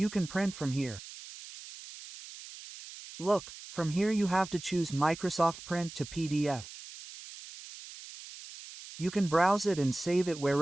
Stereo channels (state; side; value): noise; right; hiss, 14 dB below the sound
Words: can print from here. Look, from here you have to choose Microsoft Print to PDF. You can browse it and save it